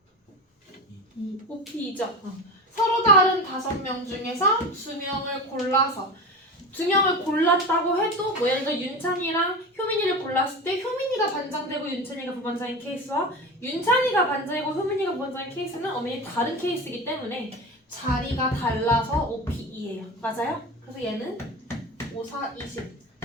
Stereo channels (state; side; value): normal; both; correlation 0.27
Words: OP이죠. 서로 다른 5명 중에서 2명을 골라서 2명을 골랐다고 해도 뭐 예를 들어 윤찬이랑 효민이를 골랐을 때 효민이가 반장되고 윤찬이가 부반장인 케이스와 윤찬이가 반장이고 효민이가 부반장인 케이스는 엄연히 다른 케이스이기 때문에 자리가 달라서 OPE예요. 맞아요? 그래서 얘는 5, 4, 20